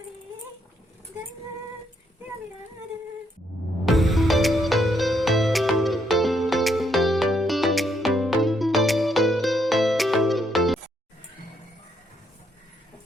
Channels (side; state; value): both; normal; correlation 0.74